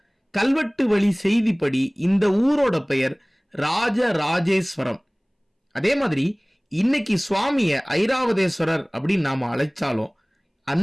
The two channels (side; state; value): both; identical; correlation 1.00